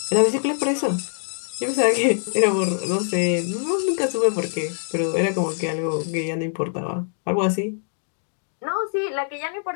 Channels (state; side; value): silent; right; digital silence